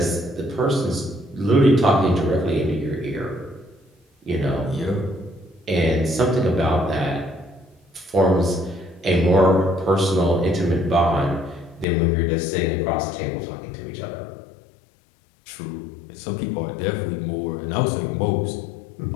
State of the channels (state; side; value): drops out; right; at 11.9 s